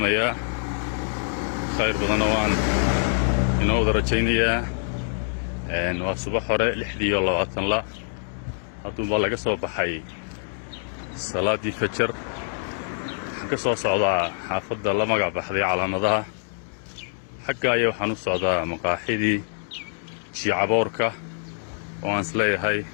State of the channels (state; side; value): silent; right; digital silence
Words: يا خير بضنوان إنه درجينيا إنه صباح وراء لحدي والله وطن لا هاتون بالله قصوا بحي صلاة دي فجر قصوا صعدا حافظ الله مقع بحذي على نضها حقا يوحنو صعدا مقاحيدي شي عبوركا وان سلي هاي